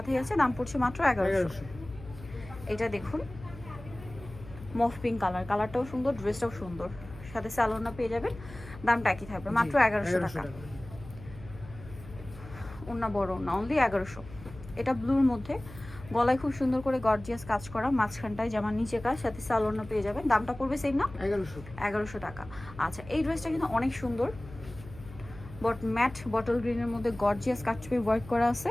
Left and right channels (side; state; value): left; noise; hum, 16 dB below the sound